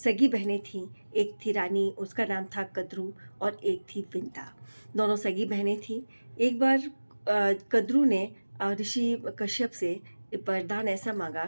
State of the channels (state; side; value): inverted; both; correlation -1.00